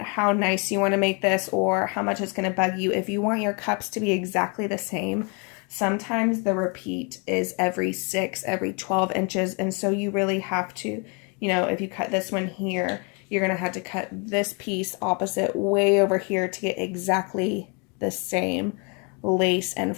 nice you want to make this or how much it's going to bug you, if you want your cups to be exactly the same, sometimes the repeat is every 6, every 12 inches, and so you really have to, if you cut this one here, you're going to have to cut this piece opposite way over here to get exactly the same lace and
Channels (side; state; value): right; quieter; 33.8 dB